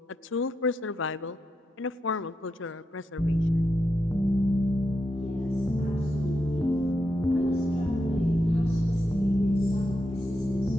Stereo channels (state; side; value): normal; both; correlation 0.85